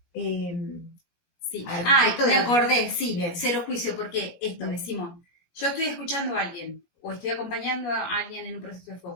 Sí. Me acordé, sí, bien. Cero juicio, porque esto, decimos, yo estoy escuchando a alguien, o estoy acompañando a alguien en un proceso de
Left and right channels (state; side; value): late; right; 17 ms